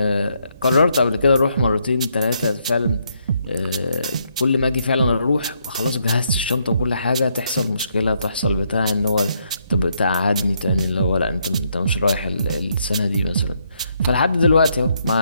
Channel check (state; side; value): inverted; both; correlation -0.75